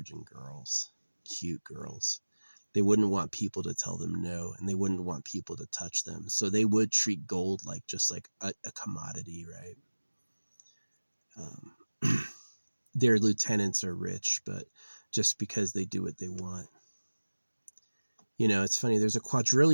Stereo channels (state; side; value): inverted; both; correlation -1.00